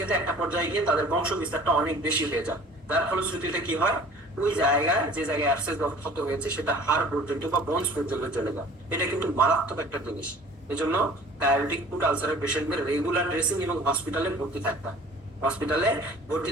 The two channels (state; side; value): normal; both; correlation 0.48